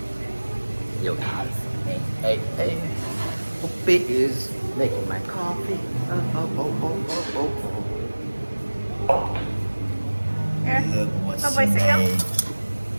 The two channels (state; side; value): inverted; both; correlation -1.00